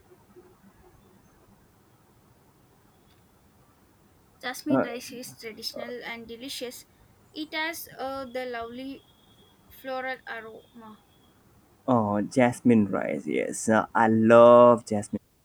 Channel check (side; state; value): both; identical; correlation 1.00